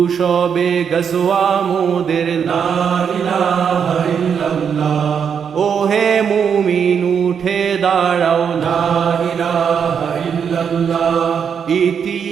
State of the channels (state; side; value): quieter; left; 7.2 dB